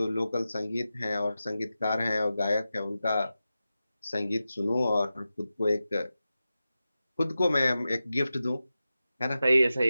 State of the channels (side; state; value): both; inverted; correlation -0.93